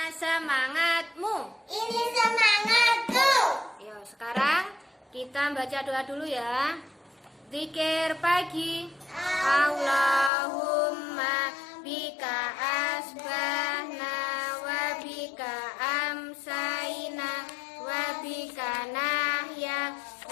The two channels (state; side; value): drops out; right; at 10.3 s